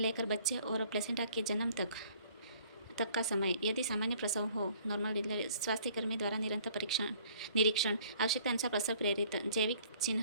बच्चे और प्लेसेंटा के जन्म तक का समय। यदि सामान्य प्रसव हो, नॉर्मल डिलीवरी, स्वास्थ्यकर्मी द्वारा निरंतर निरीक्षण, आवश्यकता अनुसार प्रसव प्रेरित जैविक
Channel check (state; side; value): inverted; both; correlation -0.57